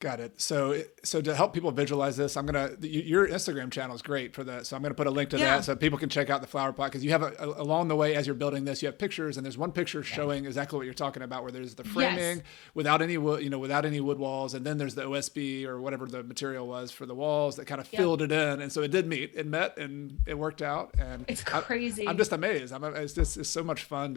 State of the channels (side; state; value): right; quieter; 20.0 dB